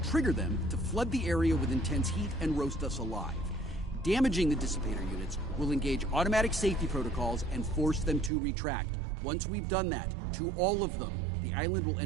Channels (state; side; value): drops out; left; at 8.3 s